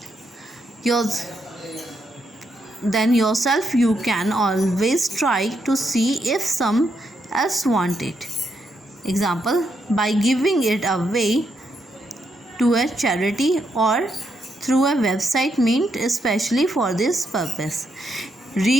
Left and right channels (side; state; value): both; normal; correlation 0.79